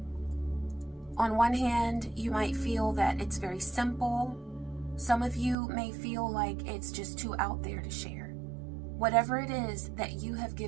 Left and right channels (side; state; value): left; drops out; at 5.6 s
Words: On one hand, you might feel that it's very simple. Some of you may feel like it's just too out there to share. Whatever it is that you have